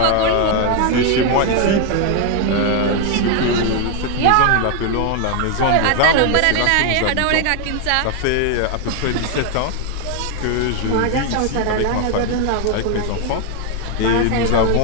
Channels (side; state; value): both; different; correlation 0.01